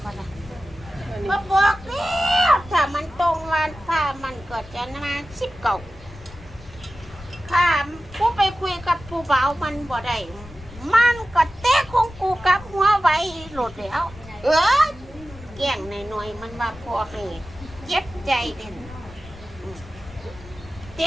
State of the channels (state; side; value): noise; left; rumble, 18 dB below the sound